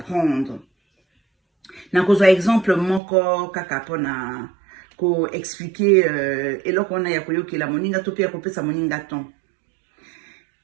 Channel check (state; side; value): drops out; left; at 3.0 s